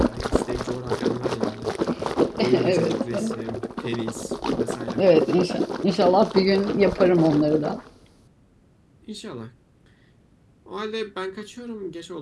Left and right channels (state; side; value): identical; both; correlation 1.00